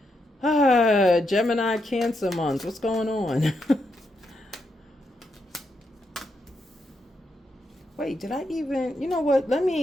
Gemini, Cancer month. What's going on? Wait, did I even, you know what?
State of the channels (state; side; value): normal; both; correlation 0.82